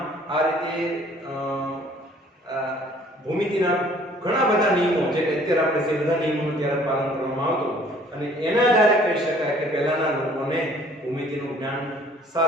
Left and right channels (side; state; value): both; normal; correlation 0.56